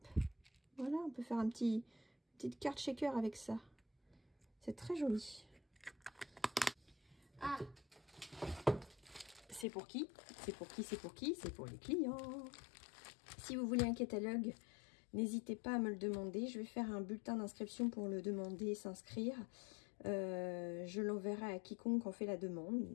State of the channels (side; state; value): right; drops out; at 9.7 s